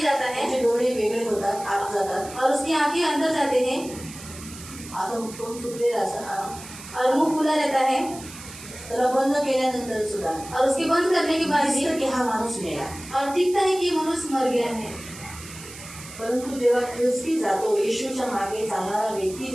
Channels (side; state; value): right; noise; hiss, 15 dB below the sound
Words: जाता है त्याचे डोळे वेगळे होतात, आत जातात और उसकी आंखें अंदर जाते हैं असं तोंड सुटलेलं असं और मुंह खुला रहता है त्याला बंद केल्यानंतर सुद्धा और उसके बंद करने के बाद भी दिसतं की हा माणूस मेला. और दिखता है कि मनुष्य मर गया है. परंतु जेव्हा ख्रिस्ती जातो, येशूच्या मागे चालणारा व्यक्ती